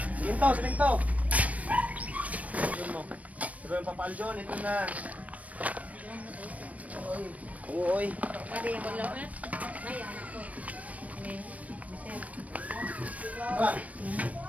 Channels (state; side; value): late; left; 0.068 ms